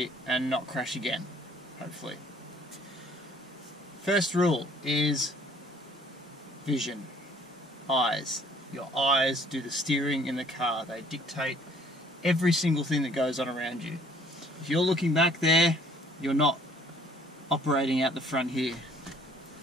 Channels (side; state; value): both; normal; correlation 0.58